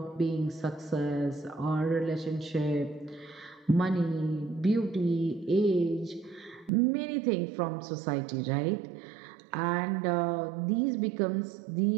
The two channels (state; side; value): drops out; left; at 6.7 s